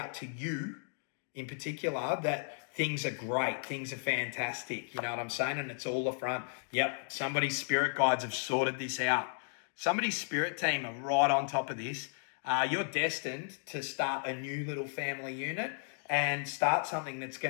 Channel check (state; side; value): silent; right; digital silence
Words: to you in particular that things are great, things are fantastic. You know what I'm saying? And it's all the front. Yep, somebody's spirit guides have sorted this out. Somebody's spirit team are right on top of this. You're destined to start a new little family unit and start something that's